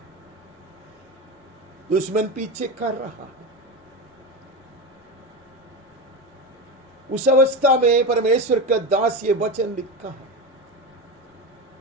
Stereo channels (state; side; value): normal; both; correlation 0.19